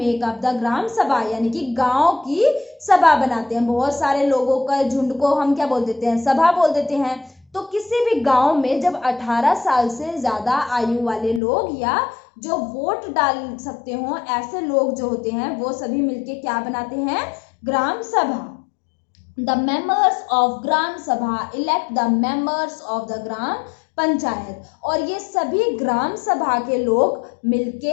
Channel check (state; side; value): drops out; right; at 11.4 s